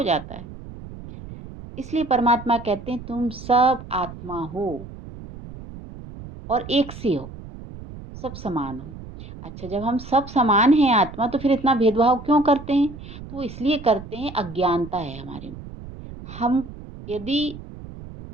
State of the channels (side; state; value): right; noise; rumble, 14 dB below the sound